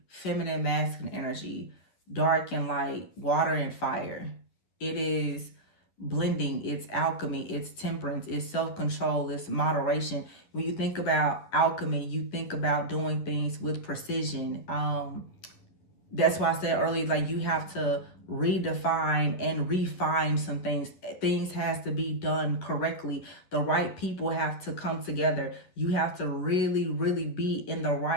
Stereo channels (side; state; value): right; late; 11 ms